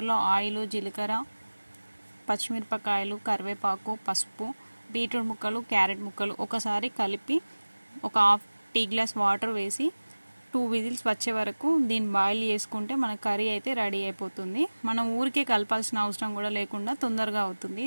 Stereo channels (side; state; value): both; inverted; correlation -1.00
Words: ఆయిల్, జీలకర్ర, పచ్చిమిరపకాయలు, కరివేపాకు, పసుపు, బీట్రూట్ ముక్కలు, క్యారెట్ ముక్కలు ఒకసారి కలిపి ఒక హాఫ్ టీ గ్లాస్ వాటర్ వేసి 2 విజిల్స్ వచ్చే వరకు దీన్ని బాయిల్ చేసుకుంటే మన కర్రీ అయితే రెడీ అయిపోతుంది. మనం ఊరికే కలపాల్సిన అవసరం కూడా లేకుండా తొందరగా అవుతుంది.